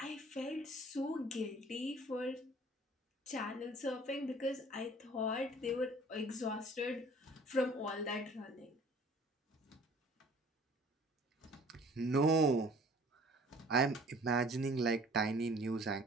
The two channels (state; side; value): normal; both; correlation 0.51